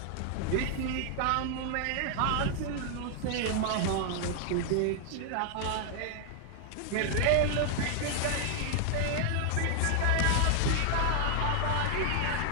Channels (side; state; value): both; different; correlation 0.00